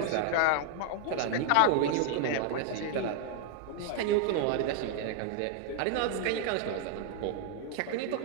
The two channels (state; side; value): different; both; correlation 0.00